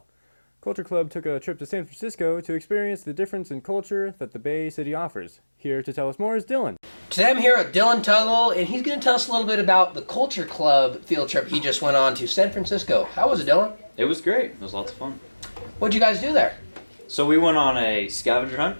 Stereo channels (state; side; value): inverted; both; correlation -1.00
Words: Culture Club took a trip to San Francisco to experience the difference in culture that the Bay City offers. Here to tell us more is Dylan. Today I'm here with Dylan Tuggle, and he's going to tell us a little bit about the Culture Club field trip he just went on to San Francisco. How was it, Dylan? It was great. It was lots of fun. What'd you guys do there? So we went on a scavenger hunt